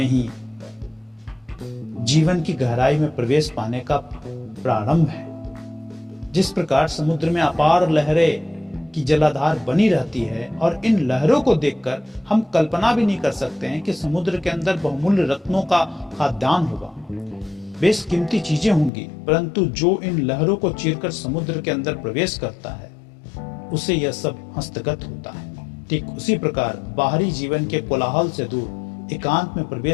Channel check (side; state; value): right; drops out; at 18.9 s